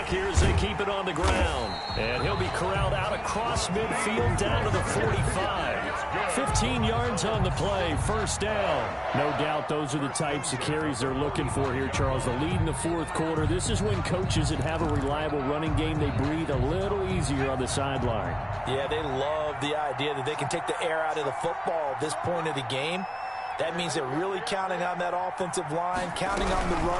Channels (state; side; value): identical; both; correlation 1.00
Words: here as they keep it on the ground. And he'll be corralled out across midfield down to the 45. 15 yards on the play, first down. No doubt those are the types of carries they're looking for here, Charles. The lead in the fourth quarter. This is when coaches that have a reliable running game, they breathe a little easier on the sideline. Yeah, they love the idea that they can take the air out of the football at this point of the game. That means they're really counting on that offensive line, counting on the